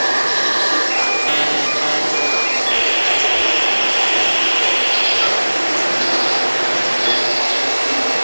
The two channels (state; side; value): inverted; both; correlation -1.00